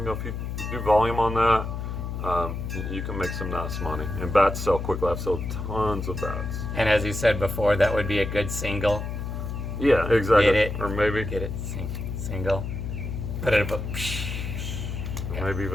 you do volume on that, you can make some nice money. And bats sell quickly. I've sold tons of bats. And as you said before, that would be a good single. Yeah, exactly. Get it? Or maybe Single. Put it up. maybe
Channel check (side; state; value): left; noise; hum, 5 dB below the sound